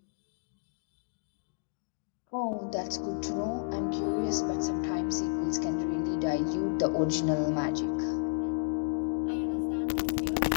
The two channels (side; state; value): right; silent; digital silence